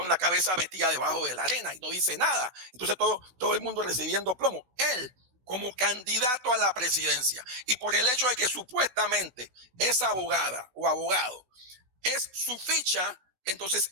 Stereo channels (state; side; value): late; left; 16 ms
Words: la cabeza metida debajo de la arena y no dice nada. Entonces todo el mundo recibiendo plomo. Él, como candidato a la presidencia, y por el hecho de que supuestamente esa abogada o abogado es su ficha,